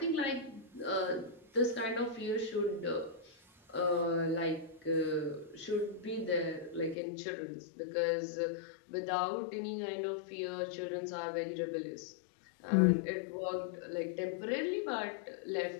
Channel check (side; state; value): right; drops out; at 7.0 s